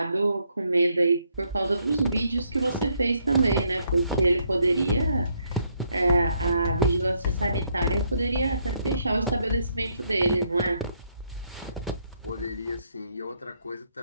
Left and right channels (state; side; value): inverted; both; correlation -0.73